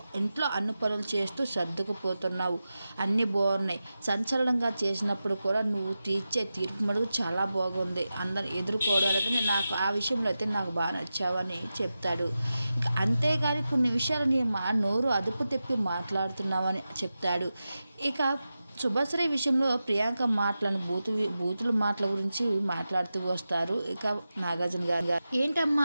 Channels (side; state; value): both; inverted; correlation -0.93